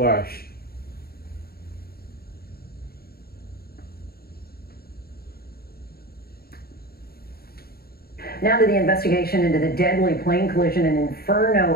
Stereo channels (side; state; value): right; late; 0.45 ms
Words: Now to the investigation into the deadly plane collision in